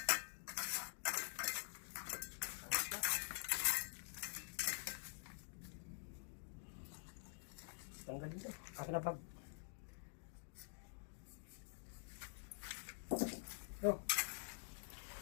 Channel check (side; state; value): right; silent; digital silence